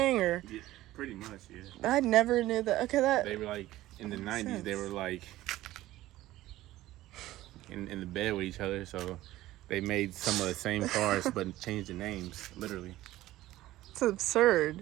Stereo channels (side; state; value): left; quieter; 15.8 dB